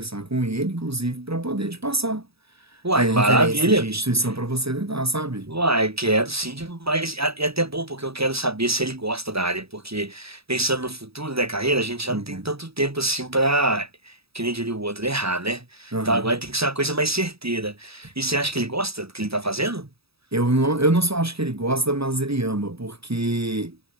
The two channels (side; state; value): left; late; 0.77 ms